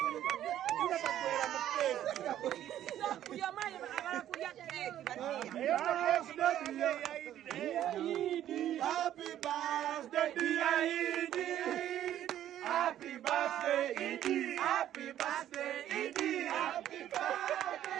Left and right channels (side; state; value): left; quieter; 11.7 dB